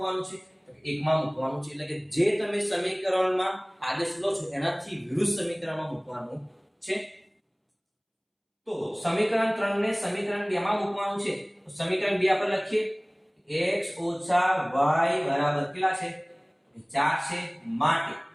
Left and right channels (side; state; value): both; identical; correlation 1.00